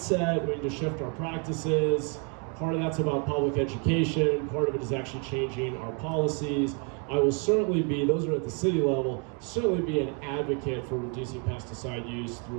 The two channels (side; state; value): left; quieter; 36.7 dB